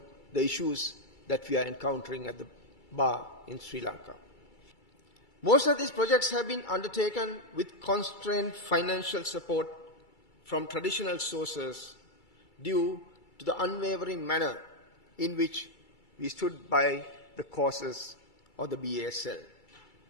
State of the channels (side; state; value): right; late; 2.3 ms